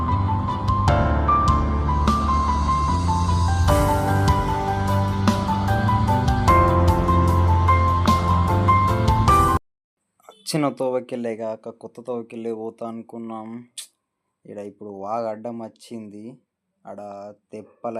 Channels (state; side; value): identical; both; correlation 1.00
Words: చిన్న తోవకెళ్ళే కాక కొత్త తోవకెళ్ళే పోతా అనుకున్నాం. ఇక్కడ ఇప్పుడు వాగ అడ్డం వచ్చింది. ఆడ తెప్పల